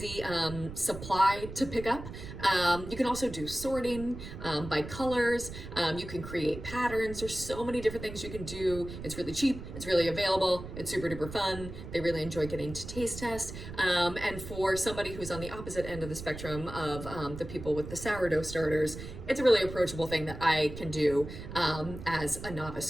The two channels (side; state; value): right; noise; rumble, 11 dB below the sound